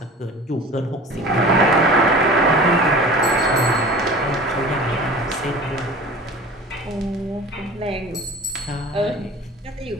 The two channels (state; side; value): normal; both; correlation 0.39